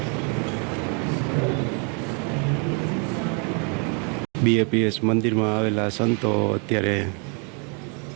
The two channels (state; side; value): quieter; left; 36.8 dB